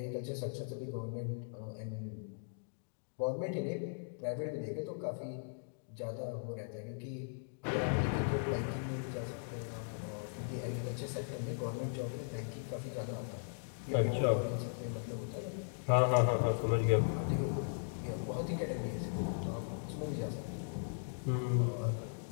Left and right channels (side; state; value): right; silent; digital silence